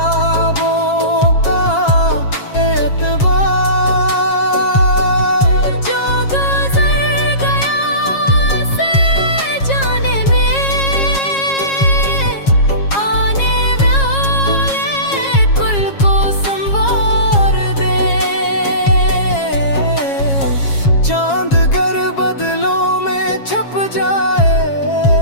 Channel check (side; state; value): right; late; 7.3 ms